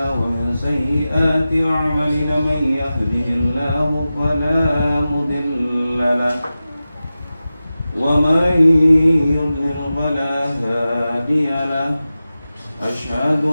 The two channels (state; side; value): inverted; both; correlation -0.94